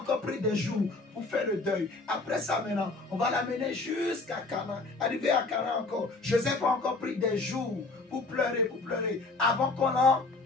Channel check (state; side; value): quieter; right; 3.5 dB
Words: pris des jours pour faire le deuil. Après ça maintenant, on va l'amener jusqu'à Canaan. Arrivé à Canaan encore, Joseph a encore pris des jours pour pleurer, avant qu'on